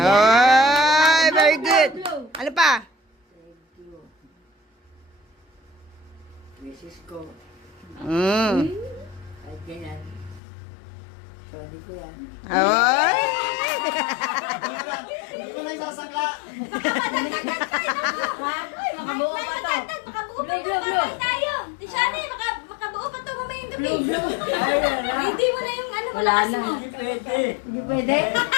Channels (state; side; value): drops out; right; at 10.4 s